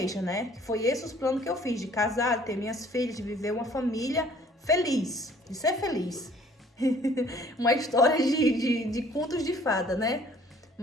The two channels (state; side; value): normal; both; correlation 0.56